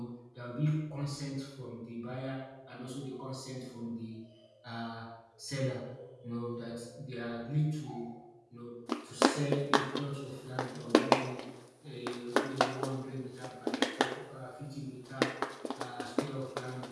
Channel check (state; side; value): identical; both; correlation 1.00